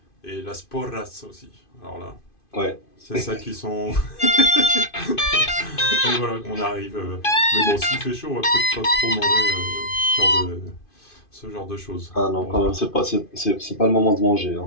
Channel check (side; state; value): right; late; 2.5 ms